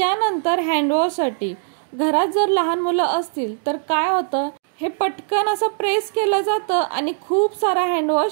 हँडवॉशसाठी घरात जर लहान मुलं असतील तर काय होतं, हे पटकन असं प्रेस केलं जातं आणि खूप सारा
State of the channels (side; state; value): left; silent; digital silence